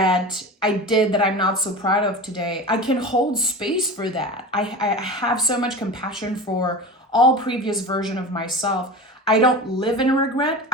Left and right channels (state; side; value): normal; both; correlation 0.30